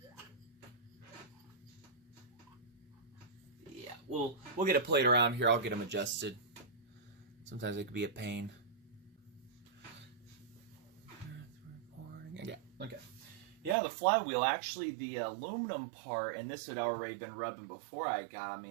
we'll get a plate around here. I'll get them adjusted. Sometimes it could be a pain. Yeah. Okay. Yeah, the flywheel, actually the aluminum part, and this had already been rubbing before I got, I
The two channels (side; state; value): left; drops out; at 13.8 s